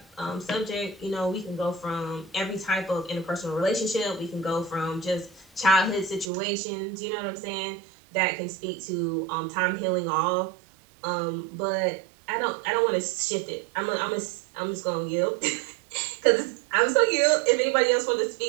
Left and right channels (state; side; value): drops out; left; at 6.3 s